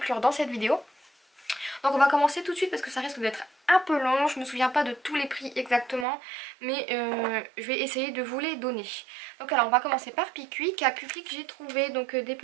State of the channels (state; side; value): drops out; left; at 6.1 s